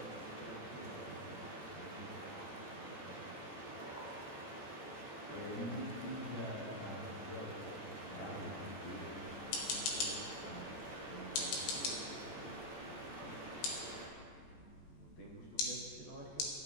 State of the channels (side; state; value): right; late; 14 ms